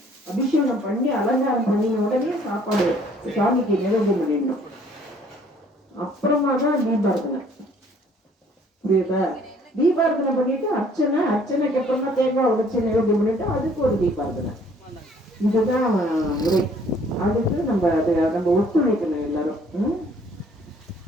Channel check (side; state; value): both; normal; correlation 0.59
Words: அபிஷேகம் பண்ணி அலங்காரம் பண்ணின உடனே சாப்பாடு சாமிக்கு நிவேதனம் பண்ணிடணும். அப்புறமா தான் தீபார்த்தனை, புரியுதா? தீபார்த்தனை பண்ணிட்டு அர்ச்சனைக்கு அப்புறமா தேங்காய் உடைச்சு நிவேதனம் பண்ணிட்டு அதுக்கு ஒரு தீபார்த்தனை. இதுதான் முறை. அதுக்கு நம்ம ஒத்துழைக்கணும் எல்லாரும்.